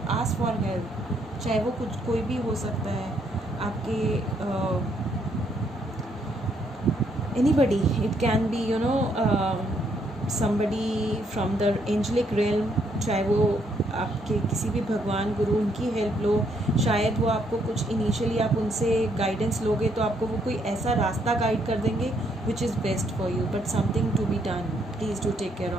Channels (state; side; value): normal; both; correlation 0.72